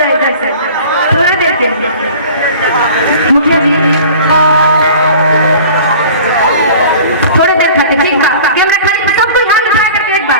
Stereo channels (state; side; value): inverted; both; correlation -0.43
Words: है इधर से, थोड़ी देर के लिए। मुखिया जी थोड़ी देर खाते, ठीक है कैमरा खाली, सब कोई हाथ उठा करके एक